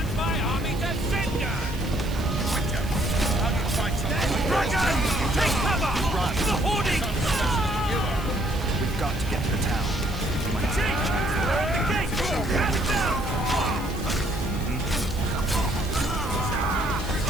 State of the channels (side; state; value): right; noise; hiss, 18 dB below the sound